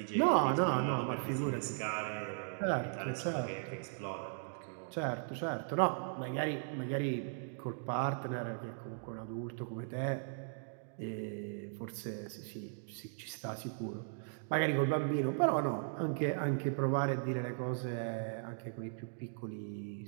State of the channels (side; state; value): left; silent; digital silence